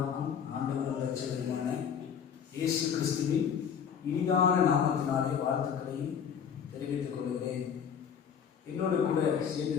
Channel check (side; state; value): right; quieter; 7.6 dB